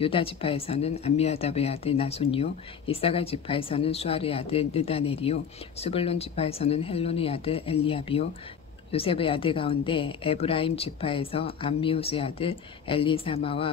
지파에서는 암미아답의 아들 나손이요 이사갈 지파에서는 수알의 아들 느다넬이요 스불론 지파에서는 헬론의 아들 엘리압이요 요셉의 아들 가운데 에브라임 지파에서 암미우스의 아들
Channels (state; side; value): quieter; right; 7.2 dB